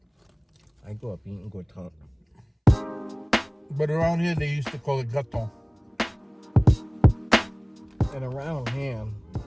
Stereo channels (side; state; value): both; identical; correlation 1.00